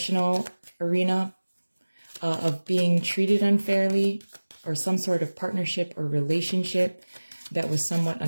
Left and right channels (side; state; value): both; inverted; correlation -1.00